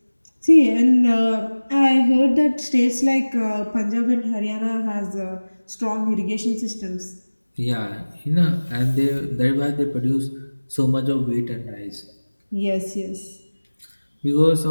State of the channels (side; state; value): both; inverted; correlation -1.00